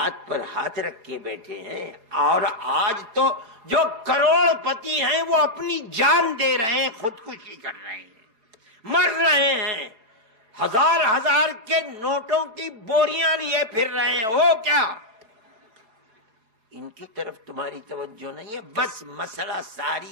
پر ہاتھ رکھ کے بیٹھے ہیں، اور آج تو جو کروڑ پتی ہیں وہ اپنی جان دے رہے ہیں، خودکشی کر رہے ہیں، مر رہے ہیں، 1000 کے نوٹوں کی بوریاں لیے پھر رہے ہیں۔ وہ کیا ان کی طرف تمہاری توجہ نہیں ہے؟ بس مسئلہ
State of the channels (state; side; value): late; left; 4.6 ms